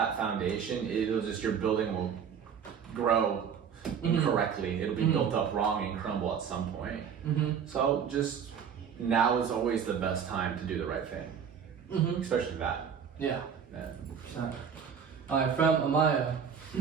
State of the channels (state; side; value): quieter; left; 7.4 dB